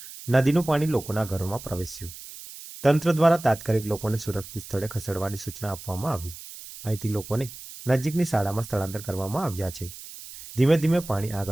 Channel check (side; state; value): right; noise; hiss, 14 dB below the sound